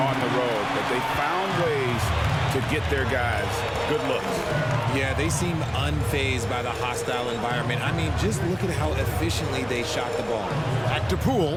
on the road, but they found ways to get their guys good looks. Yeah, they seem unfazed by the hostile environment. I mean, just look at how efficiently they shot the ball. Back to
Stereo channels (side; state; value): both; identical; correlation 1.00